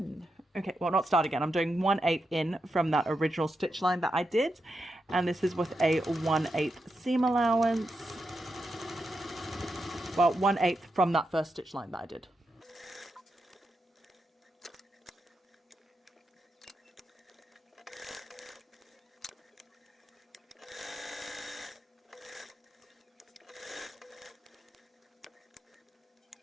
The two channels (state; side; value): normal; both; correlation 0.86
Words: Okay, well, not start again. I'm doing 1/8 in from that original stitch line that I did, and this is with a 1/8 seam allowance. Well, 1/8 from that first stitch line that I did.